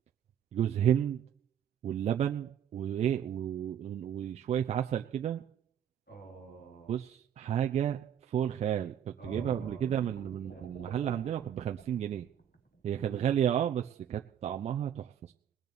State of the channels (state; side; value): quieter; left; 9.4 dB